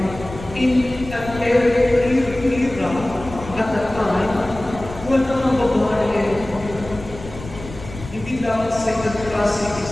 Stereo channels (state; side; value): noise; left; rumble, 14 dB below the sound